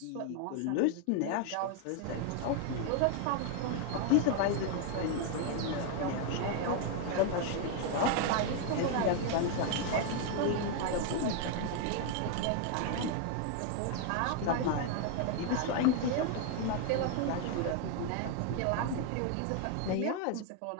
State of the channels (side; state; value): both; different; correlation 0.00